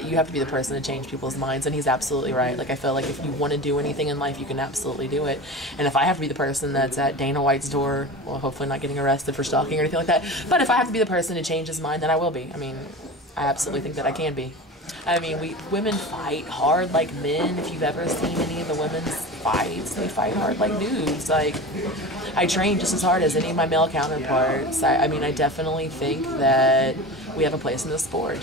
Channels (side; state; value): both; normal; correlation 0.31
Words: you have to be the person to change people's minds, and he's absolutely right. Like I feel like if you want to do anything in life, you can absolutely do it, and if I have to be the person that's at Dana White's door, well, hopefully not getting arrested for stalking or anything like that, but if I have to be the person to change his mind, then I will be. I mean, I absolutely think that I can be. I mean, women fight hard like men. If you've ever seen any of the women's fights, they fight hard like dudes. Like, I train just as hard as any of my male counterparts. I mean, I definitely think that we have a place in the sport,